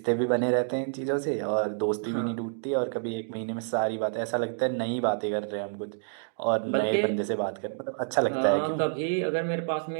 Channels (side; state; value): left; silent; digital silence